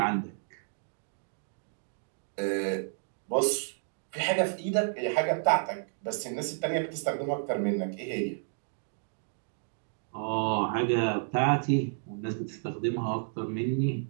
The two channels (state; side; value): silent; left; digital silence